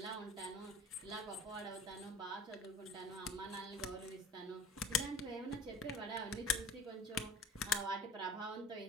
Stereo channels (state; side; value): normal; both; correlation 0.41